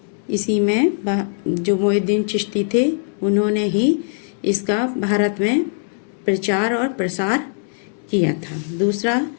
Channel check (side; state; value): right; silent; digital silence